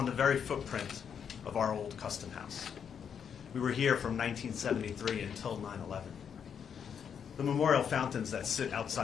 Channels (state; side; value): quieter; right; 7.6 dB